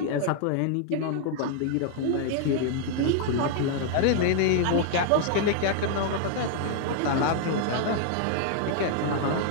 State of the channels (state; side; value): different; both; correlation 0.00